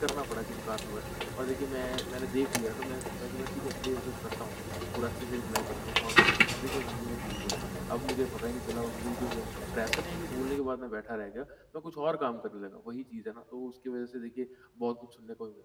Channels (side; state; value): both; identical; correlation 1.00